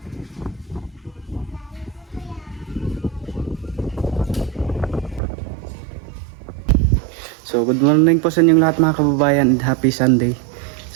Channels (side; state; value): left; drops out; at 5.2 s